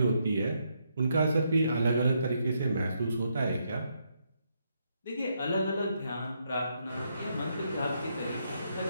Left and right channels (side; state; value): both; inverted; correlation -0.77